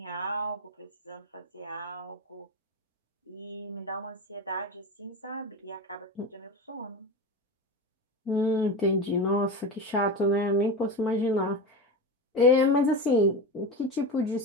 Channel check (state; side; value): normal; both; correlation 0.23